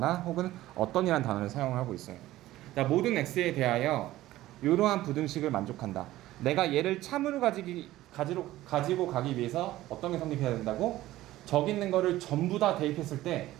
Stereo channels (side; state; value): left; quieter; 15.7 dB